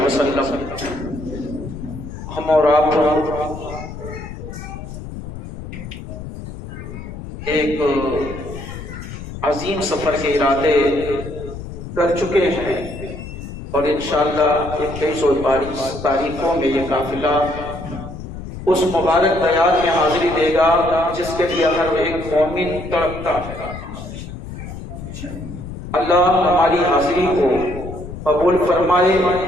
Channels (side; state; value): left; noise; rumble, 10 dB below the sound